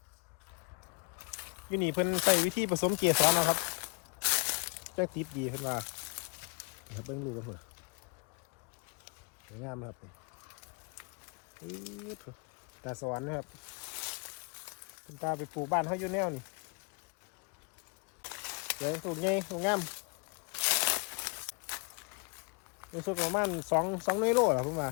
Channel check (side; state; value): right; quieter; 32.6 dB